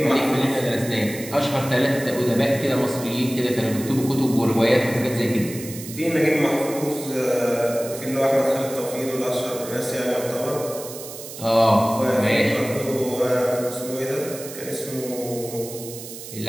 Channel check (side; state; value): right; noise; hiss, 12 dB below the sound